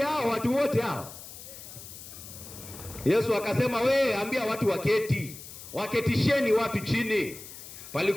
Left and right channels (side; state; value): left; noise; hiss, 14 dB below the sound